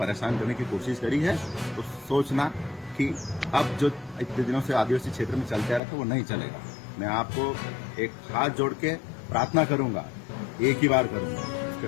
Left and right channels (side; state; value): right; drops out; at 5.8 s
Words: करने की कोशिश करी है तो सोचना कि अब जो इतने दिनों से आदिवासी क्षेत्र में चलते आ रहा था वो नहीं चलेगा। मैं आपको एक हाथ जोड़ के प्रार्थना करूंगा, एक ही बार करूंगा।